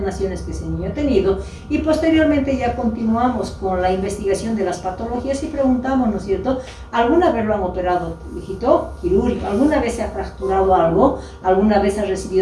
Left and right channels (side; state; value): both; identical; correlation 1.00